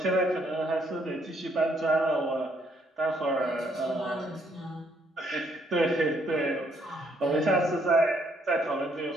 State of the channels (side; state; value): both; normal; correlation 0.70